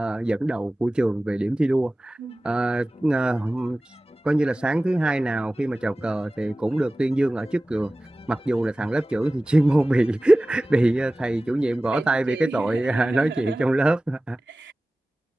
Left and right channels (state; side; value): normal; both; correlation 0.97